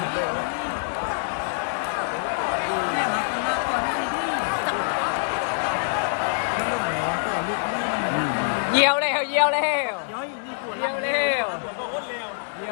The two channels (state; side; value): silent; right; digital silence